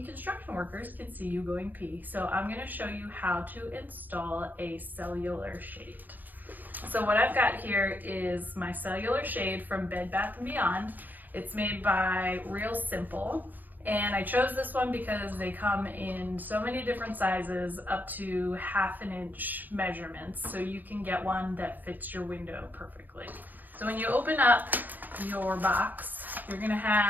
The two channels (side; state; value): left; late; 0.085 ms